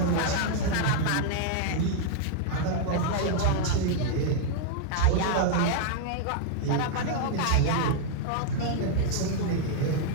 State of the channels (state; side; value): different; both; correlation -0.01